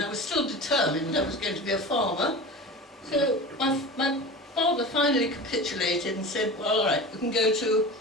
I was still determined I was going to be a farmer. So my father finally capitulated and said, well, all right, you can go to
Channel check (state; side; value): normal; both; correlation 0.32